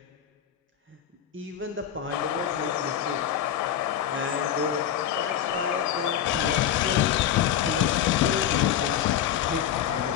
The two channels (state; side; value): quieter; right; 9.9 dB